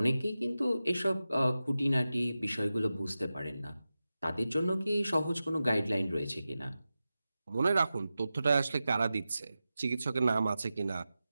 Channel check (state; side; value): inverted; both; correlation -0.93